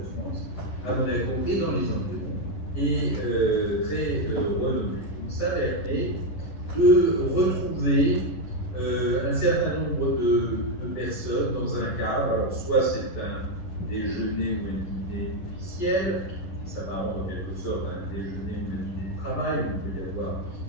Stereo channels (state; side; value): late; right; 11 ms